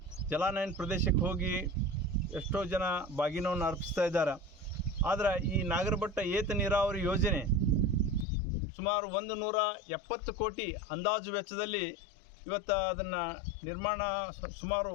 ಜಲಾನಯನ ಪ್ರದೇಶಕ್ಕೆ ಹೋಗಿ ಎಷ್ಟೋ ಜನ ಬಾಗಿನವನ್ನು ಅರ್ಪಿಸ್ತಾ ಇದ್ದಾರೆ. ಆದರೆ ಈ ನಾಗರಬೆಟ್ಟ ಏತ ನೀರಾವರಿ ಯೋಜನೆ ಸುಮಾರು 170 ಕೋಟಿ ಅಂದಾಜು ವೆಚ್ಚದಲ್ಲಿ ಇವತ್ತು ಅದನ್ನು ನಿರ್ಮಾಣ ಸುಮಾರು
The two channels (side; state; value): right; drops out; at 8.2 s